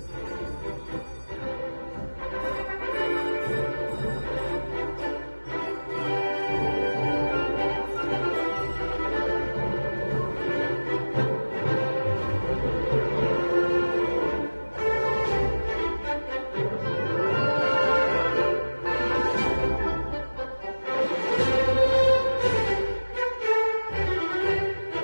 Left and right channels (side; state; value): both; inverted; correlation -1.00